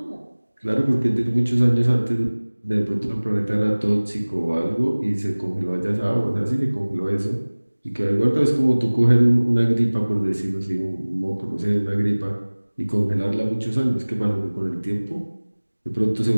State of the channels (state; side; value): inverted; both; correlation -1.00